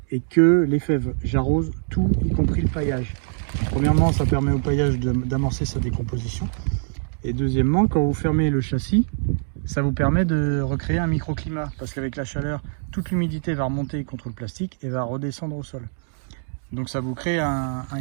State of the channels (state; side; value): silent; left; digital silence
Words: et que les fèves. J'arrose tout, y compris le paillage. Premièrement, ça permet au paillage d'amorcer sa décomposition. Et deuxièmement, quand vous fermez le châssis, ça vous permet de recréer un microclimat. Parce qu'avec la chaleur, toute l'humidité va remonter contre le plastique et va redescendre au sol. Donc ça vous crée un